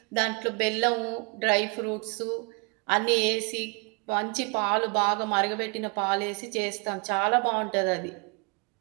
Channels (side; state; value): left; quieter; 33.1 dB